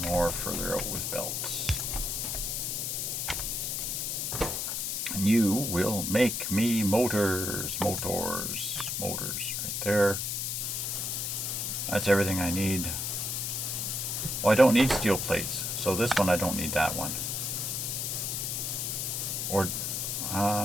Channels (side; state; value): left; noise; hiss, 1 dB below the sound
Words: more further out with belts. And you will make me motors right there. That's everything I need. Oh, I don't need steel plates, so this one I don't need that one. Or,